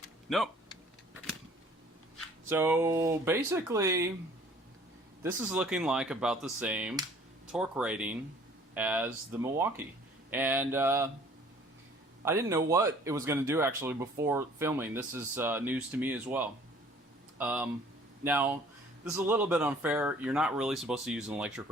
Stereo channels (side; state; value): both; normal; correlation 0.54